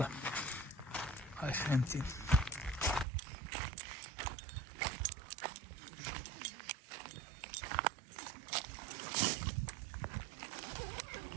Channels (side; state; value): left; drops out; at 3.1 s